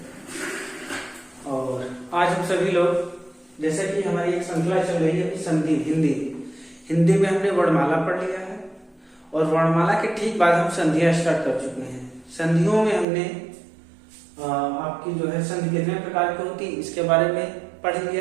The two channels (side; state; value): left; drops out; at 13.1 s